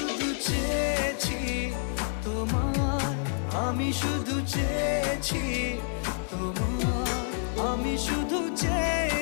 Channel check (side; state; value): right; silent; 56 dB below the other